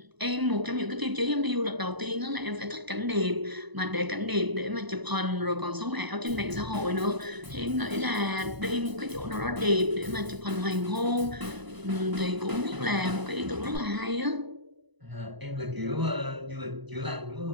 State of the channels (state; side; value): late; left; 1.0 ms